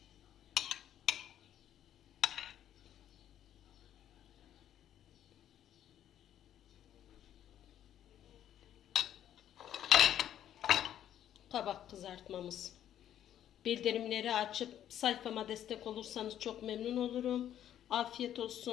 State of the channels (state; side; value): quieter; right; 10.9 dB